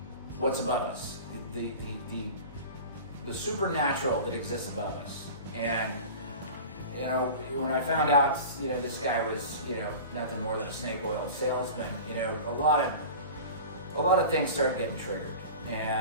what's above us, the supernatural that exists above us. And you know, when I found out, you know, this guy was, you know, nothing more than a snake oil salesman, you know, a lot of things started getting triggered.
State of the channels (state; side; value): inverted; both; correlation -0.35